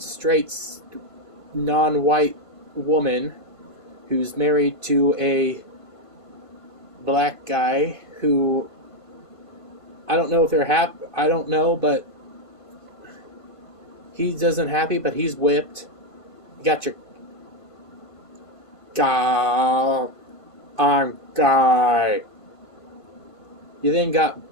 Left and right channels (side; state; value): right; late; 1.5 ms